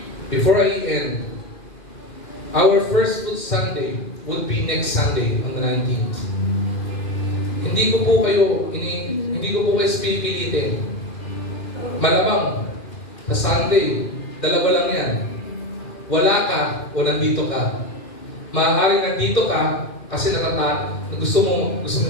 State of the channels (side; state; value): right; late; 2.4 ms